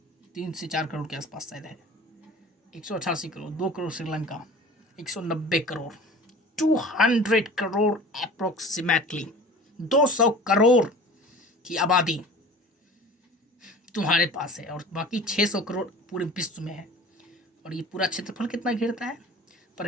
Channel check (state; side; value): normal; both; correlation 0.41